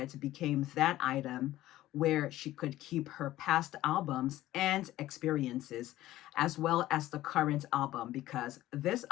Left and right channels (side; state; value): right; quieter; 15.2 dB